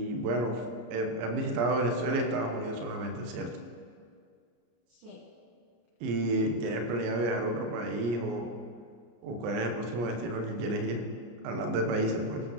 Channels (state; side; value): late; left; 34 ms